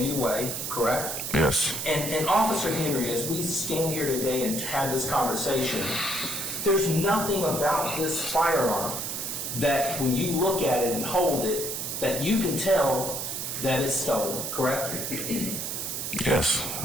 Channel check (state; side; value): noise; right; hiss, 3 dB below the sound